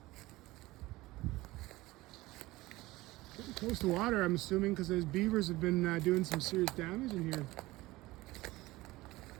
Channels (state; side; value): quieter; left; 19.2 dB